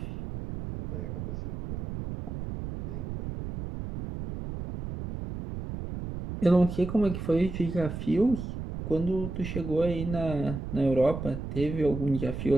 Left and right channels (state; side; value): noise; right; rumble, 7 dB below the sound